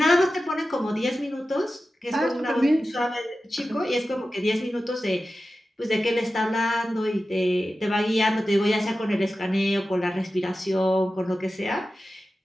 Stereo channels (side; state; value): both; normal; correlation 0.93